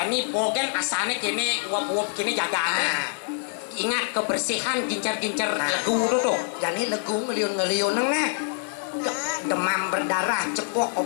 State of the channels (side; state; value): right; silent; 61 dB below the other